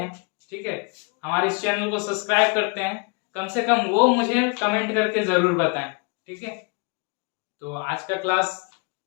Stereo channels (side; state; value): right; quieter; 32.7 dB